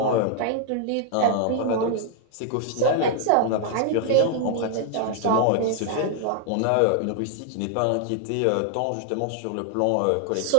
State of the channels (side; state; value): both; different; correlation 0.00